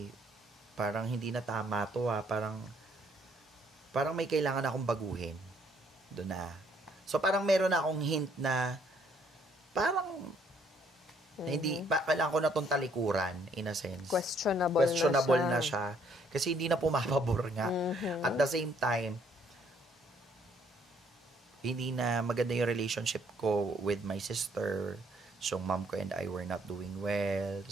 parang hindi na tama to parang may kailangan akong baguhin. Doon na. So, parang meron na akong hint na parang hindi, kailangan ko na itong talikuran, in a sense. Questionable na siya. Kasi hindi na pumapabor nga. At the same time, hindi na maganda yung relationship ko with my sister. So, mom ko and I were not doing well.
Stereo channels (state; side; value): normal; both; correlation 0.66